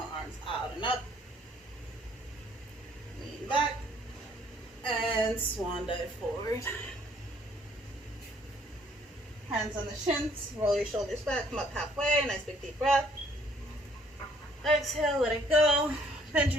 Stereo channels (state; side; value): normal; both; correlation 0.63